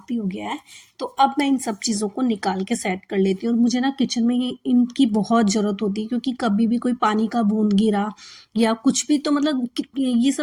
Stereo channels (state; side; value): identical; both; correlation 1.00